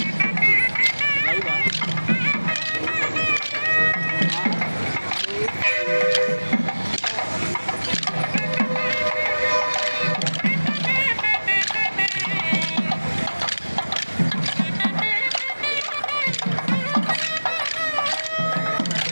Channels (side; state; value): both; inverted; correlation -1.00